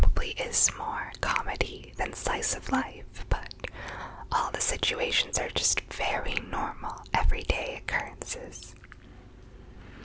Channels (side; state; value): both; identical; correlation 1.00